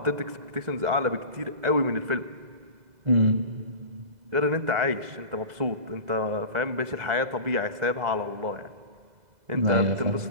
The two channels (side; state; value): left; late; 2.0 ms